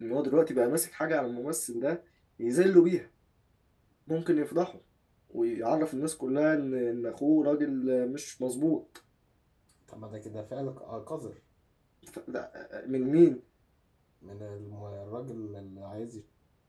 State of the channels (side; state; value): both; identical; correlation 1.00